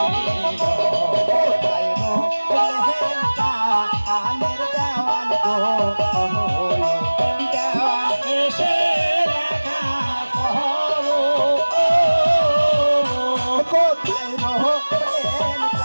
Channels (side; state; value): both; inverted; correlation -1.00